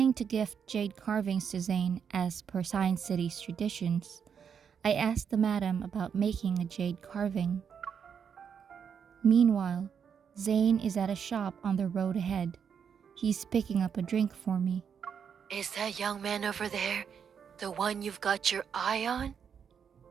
to gift jade carvings to Zayne as per Science City's traditions, I asked the madam about making a jade carving. Meanwhile, Zayne is at a shop on the road ahead. He's picking up a drink for me. Is that young man over there the one you've got your eye on?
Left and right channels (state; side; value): quieter; left; 7.3 dB